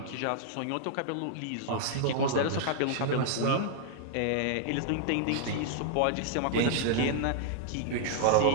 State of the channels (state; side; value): different; both; correlation -0.01